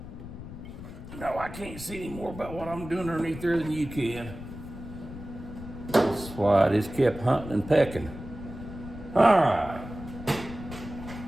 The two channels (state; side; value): noise; left; rumble, 12 dB below the sound